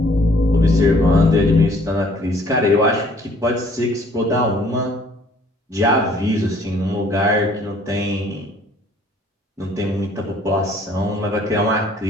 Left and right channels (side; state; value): both; normal; correlation 0.58